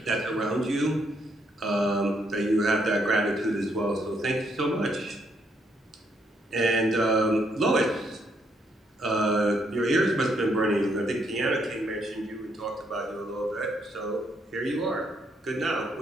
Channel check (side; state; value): both; normal; correlation 0.73